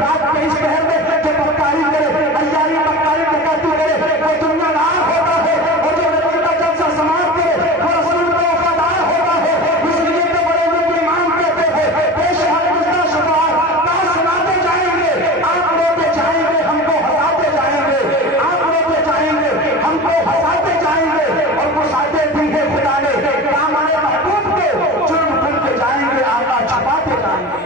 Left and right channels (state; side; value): normal; both; correlation 0.32